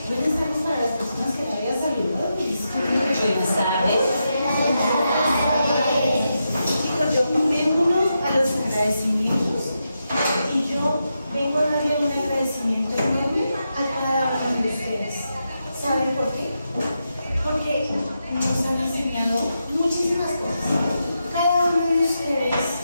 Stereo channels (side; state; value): both; inverted; correlation -0.86